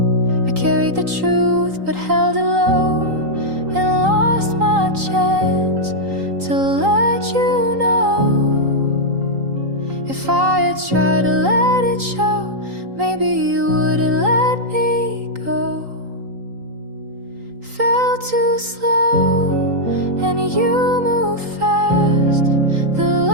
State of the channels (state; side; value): late; left; 3.8 ms